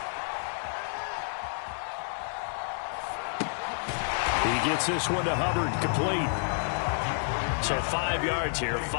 He gets this one to Hubbard, complete. So 5 yards here,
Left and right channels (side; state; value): right; silent; 58 dB below the other